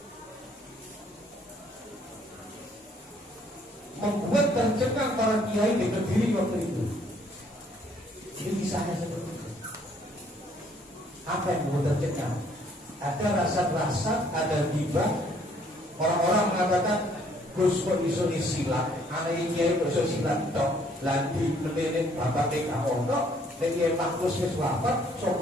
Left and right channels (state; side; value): normal; both; correlation 0.63